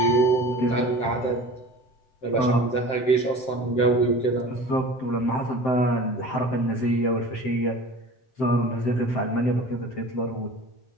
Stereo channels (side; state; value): right; late; 7.6 ms